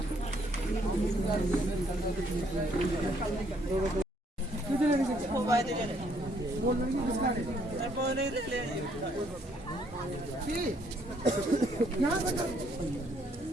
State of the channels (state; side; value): normal; both; correlation 0.68